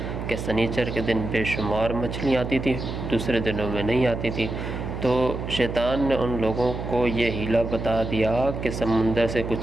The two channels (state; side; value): noise; right; hum, 6 dB below the sound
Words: کہ سنیچر کے دن بے شمار مچھلیاں آتی تھیں، دوسرے دنوں میں نہیں آتی تھیں۔ تو شیطان نے ان لوگوں کو یہ ہیلا بتا دیا کہ سمندر سے